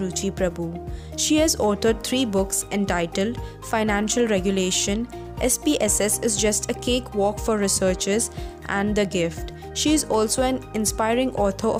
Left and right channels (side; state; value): both; identical; correlation 1.00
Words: Ruchi Prabhu. She has authored 3 books entitled Financial Regulation, SPSS is Just a Cakewalk for Researchers, and The Gift. She is also an inspiring author